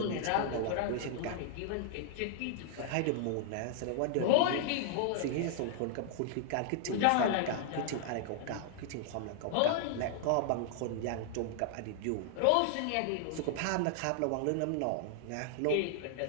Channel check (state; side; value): different; both; correlation 0.00